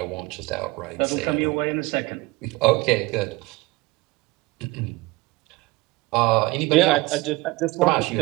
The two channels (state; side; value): quieter; left; 22.5 dB